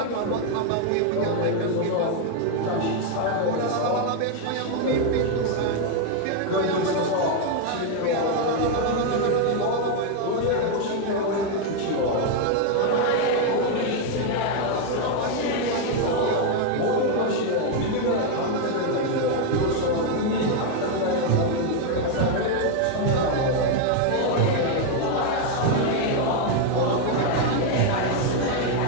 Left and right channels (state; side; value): different; both; correlation 0.01